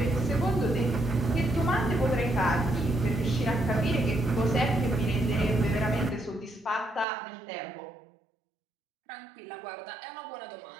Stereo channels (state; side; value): drops out; left; at 7.1 s